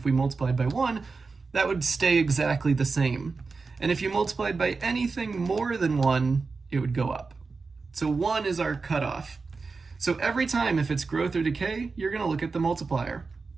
we multiplied by 1, that would stay exactly the same. And if you multiplied by anything more than 1, it would go up. So 1 is our cutoff. So every time, if it's growth or decay, you're going to look at the multiplier.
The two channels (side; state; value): left; quieter; 4.3 dB